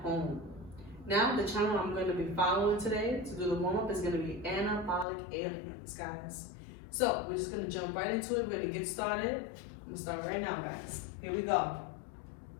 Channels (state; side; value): drops out; right; at 5.1 s